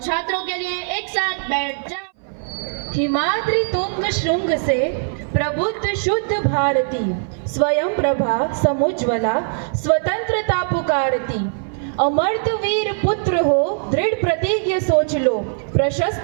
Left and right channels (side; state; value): left; silent; 60 dB below the other